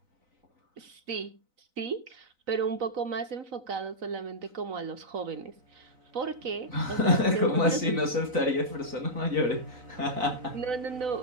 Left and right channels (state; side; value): late; left; 4.0 ms